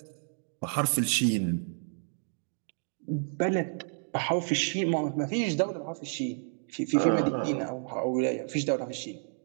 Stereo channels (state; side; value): silent; left; 58 dB below the other